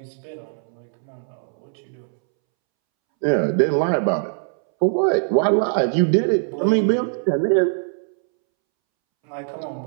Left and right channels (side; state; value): left; silent; 64 dB below the other